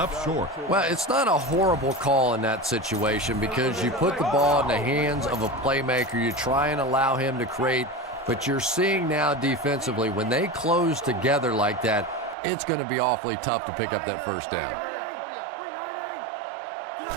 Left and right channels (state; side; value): drops out; left; at 12.4 s